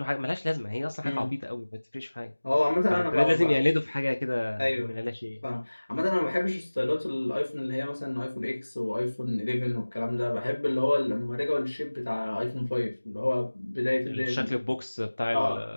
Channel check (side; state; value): both; inverted; correlation -1.00